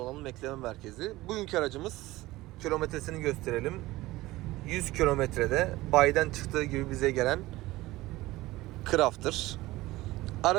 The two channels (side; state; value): left; quieter; 18.4 dB